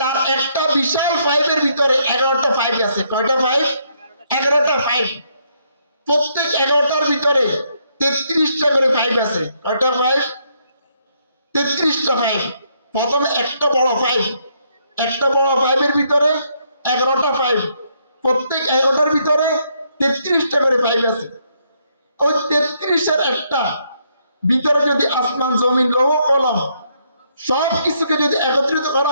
একটা বিশাল পাইপের ভিতরে 11টা পাইপ আছে। কয়টা পাইপ? 11টা পাইপ। প্রত্যেক 11টার ভিতরে 33টা করে পাইপ আছে। কয়টা পাইপ? 33টা পাইপ। প্রথমে একটা বড় পাইপ, একটা বড় পাইপের ভিতরে 11টা পাইপ, প্রত্যেক 11টার ভিতরে 33টা করে পাইপ আছে। ওই 33-এর একটা ভিতরে যদি আসমান জমিন লৌহ কলম সব কিছুকে যদি একত্রিত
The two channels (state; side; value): inverted; both; correlation -0.73